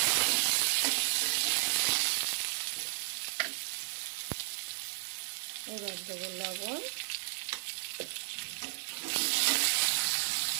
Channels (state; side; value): silent; left; digital silence